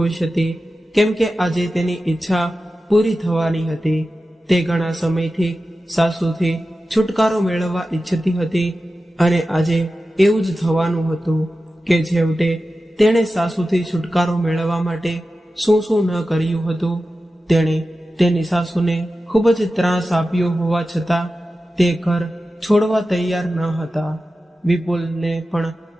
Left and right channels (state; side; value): normal; both; correlation 0.93